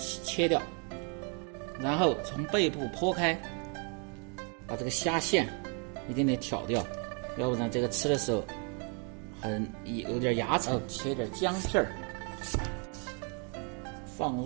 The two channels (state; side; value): quieter; left; 38.1 dB